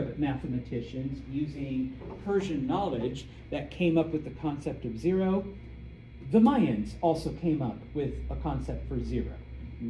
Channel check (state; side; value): identical; both; correlation 1.00